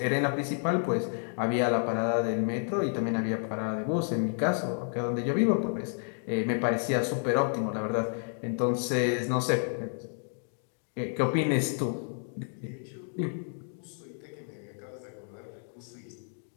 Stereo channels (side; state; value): right; silent; 57 dB below the other